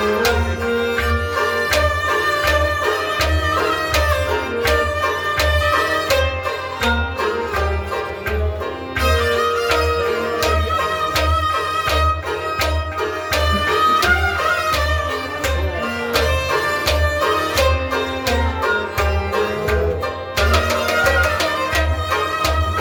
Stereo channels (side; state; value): both; identical; correlation 1.00